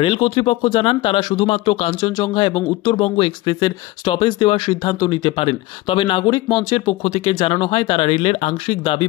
রেল কর্তৃপক্ষ জানান তারা শুধুমাত্র কাঞ্চনজঙ্ঘা এবং উত্তরবঙ্গ এক্সপ্রেসের স্টপেজ দেওয়ার সিদ্ধান্ত নিতে পারেন। তবে নাগরিক মঞ্চের পক্ষ থেকে জানানো হয় তারা রেলের আংশিক দাবি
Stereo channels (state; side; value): quieter; right; 18.7 dB